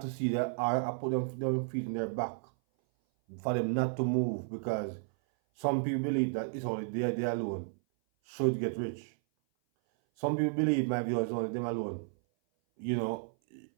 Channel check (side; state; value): left; silent; 56 dB below the other